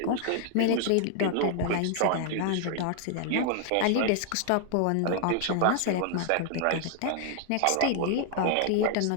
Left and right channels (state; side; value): different; both; correlation 0.00